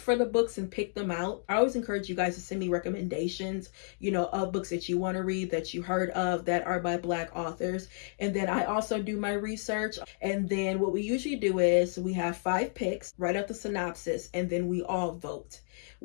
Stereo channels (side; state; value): right; silent; digital silence